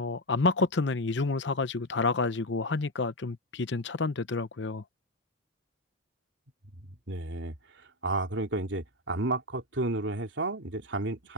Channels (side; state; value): both; normal; correlation 0.11